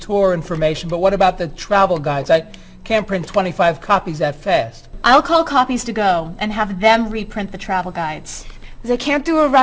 information, but what about the travel guides? I can't print 25 copies that fast. I'll call Copies to Go and have them reprint the travel guides. They can't do a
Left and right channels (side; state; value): both; identical; correlation 1.00